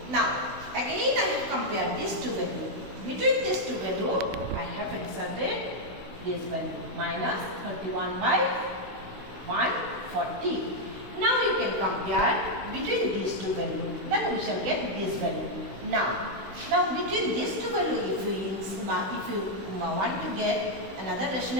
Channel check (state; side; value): late; left; 16 ms